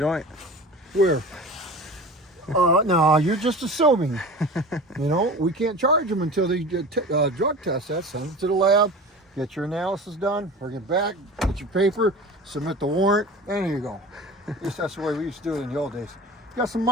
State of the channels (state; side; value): normal; both; correlation 0.36